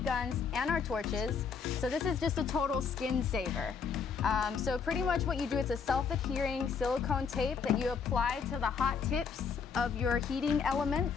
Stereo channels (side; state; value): right; quieter; 5.9 dB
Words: guns and our torches. So this is just a total skin saver. So pretty much what you do, it's a self-adhering silicone tape that you apply to the hot tips of your heating